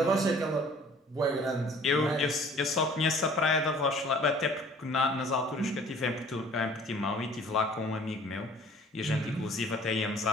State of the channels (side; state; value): both; normal; correlation 0.52